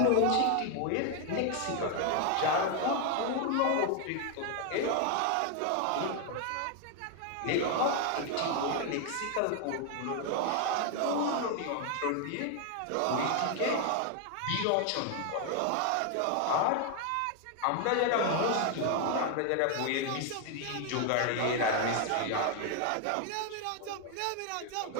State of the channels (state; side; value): different; both; correlation 0.00